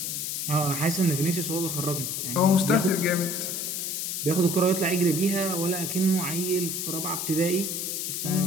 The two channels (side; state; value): left; noise; hiss, 2 dB below the sound